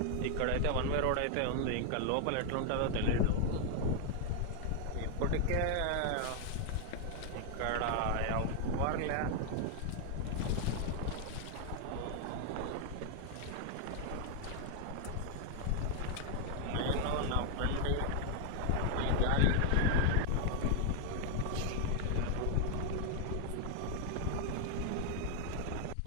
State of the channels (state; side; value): different; both; correlation 0.00